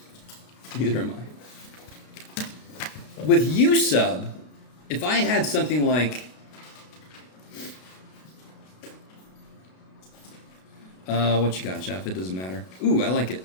Neither am I. With U sub, if I had something like, what you got, Jeff? It doesn't matter. Ooh, I like it.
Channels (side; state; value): right; late; 33 ms